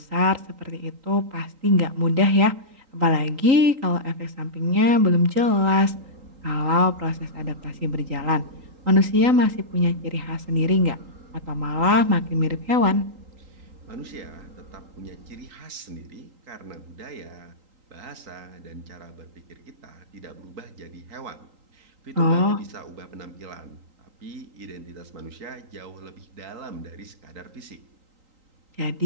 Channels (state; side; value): late; left; 3.8 ms